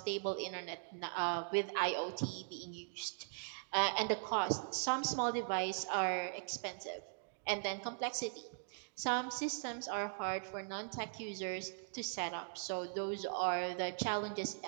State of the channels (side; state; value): left; silent; digital silence